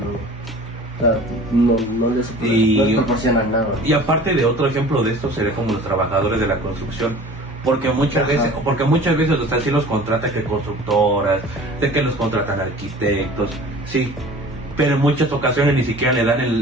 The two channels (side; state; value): both; normal; correlation 0.43